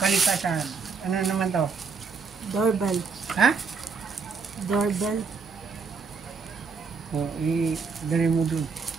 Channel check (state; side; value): quieter; left; 5.1 dB